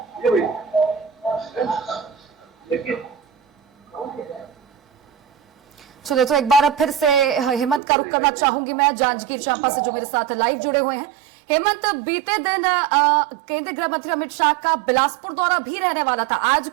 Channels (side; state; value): left; drops out; at 7.8 s